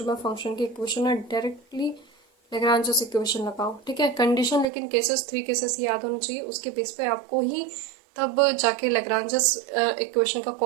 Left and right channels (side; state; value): left; drops out; at 4.7 s